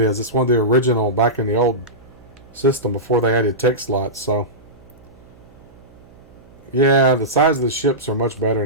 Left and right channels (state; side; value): noise; right; hum, 25 dB below the sound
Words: It's one of the original back in the old system before they added tech slots. So yeah, the size of the ships are much